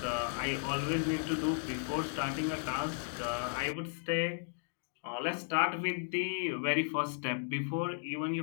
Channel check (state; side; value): silent; right; digital silence